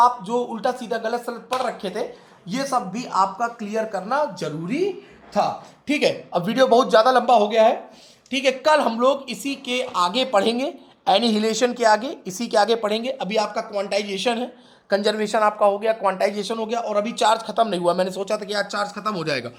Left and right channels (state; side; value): identical; both; correlation 1.00